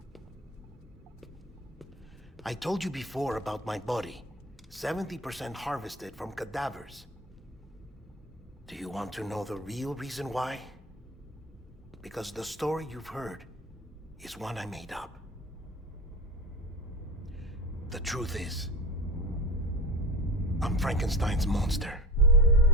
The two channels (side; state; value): both; normal; correlation 0.31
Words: I told you before about my body. 70% harvested from cadavers. Do you want to know the real reason why? Because the story you've heard is one I made up. The truth is, I'm Frankenstein's monster.